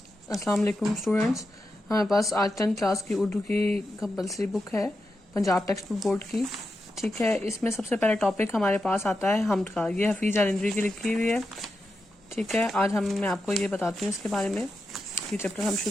السلام علیکم اسٹوڈنٹس. ہمارے پاس آج 10th کلاس کی اردو کی کمپلسری بک ہے پنجاب ٹیکسٹ بک بورڈ کی. ٹھیک ہے, اس میں سب سے پہلا ٹاپک ہمارے پاس آتا ہے حمد کا. یہ حفیظ الندوی کی لکھی ہوئی ہے. ٹھیک ہے, آج میں آپ کو یہ بتاتی ہوں اس کے بارے میں. یہ چیپٹر ہم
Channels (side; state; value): both; normal; correlation 0.88